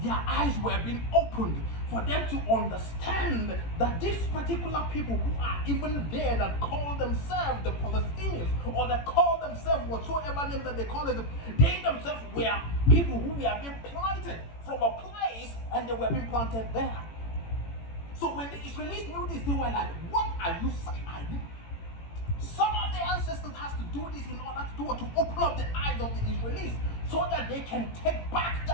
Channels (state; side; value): late; right; 18 ms